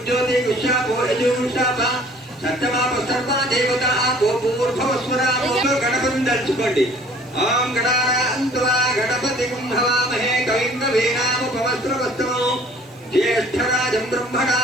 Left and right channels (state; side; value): noise; right; hiss, 29 dB below the sound